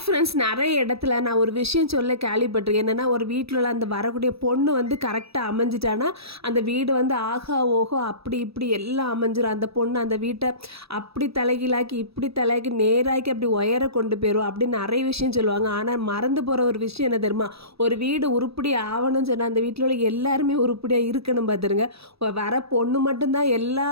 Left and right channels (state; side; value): late; left; 0.77 ms